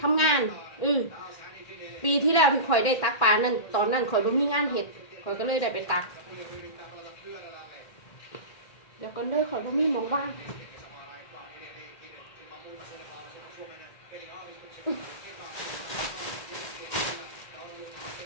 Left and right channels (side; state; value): right; late; 1.9 ms